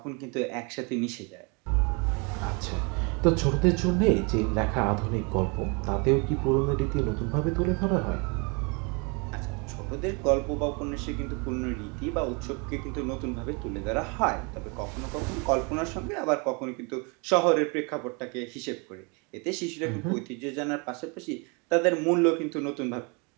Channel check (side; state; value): left; quieter; 31.9 dB